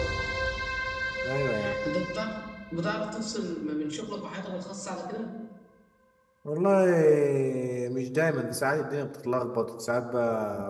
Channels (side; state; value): both; identical; correlation 1.00